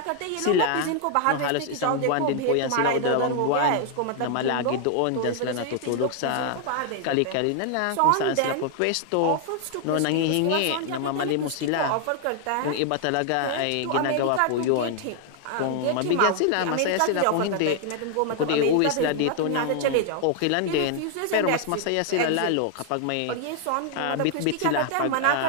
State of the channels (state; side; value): different; both; correlation 0.00